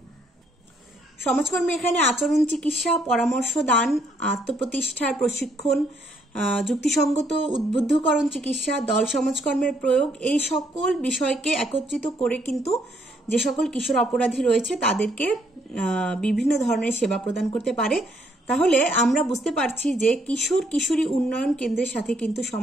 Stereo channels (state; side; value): normal; both; correlation 0.70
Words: সমাজকর্মী এখানে আচরণ চিকিৎসা, পরামর্শ দান, আত্মপ্রতিষ্ঠার প্রশিক্ষণ, যুক্তিসঙ্গত উদ্বুদ্ধকরণ চিকিৎসা, দল সমাজকর্মের প্রয়োগ, এই সকল বিষয়কে একত্রিত করে কিন্তু যে সকল কিশোর অপরাধী রয়েছে তাদেরকে বিভিন্ন ধরনের সেবা প্রদান করতে পারে। তাহলে আমরা বুঝতে পারছি যে কিশোর কিশোরী উন্নয়ন কেন্দ্রের সাথে কিন্তু